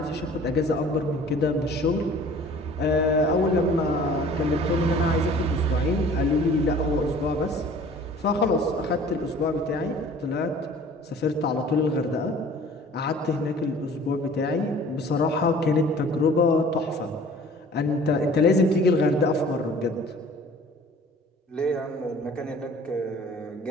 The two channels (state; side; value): normal; both; correlation 0.48